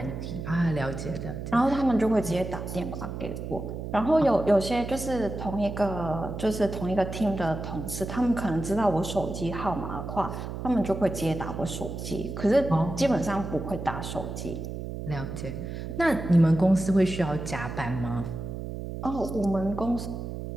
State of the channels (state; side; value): noise; right; hum, 7 dB below the sound